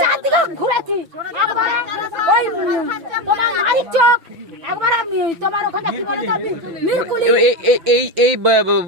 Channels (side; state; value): left; late; 6.0 ms